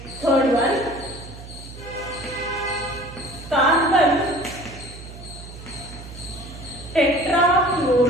Third one, carbon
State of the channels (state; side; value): noise; right; hum, 14 dB below the sound